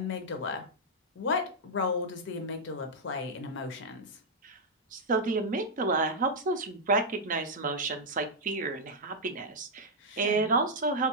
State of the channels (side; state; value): both; normal; correlation -0.05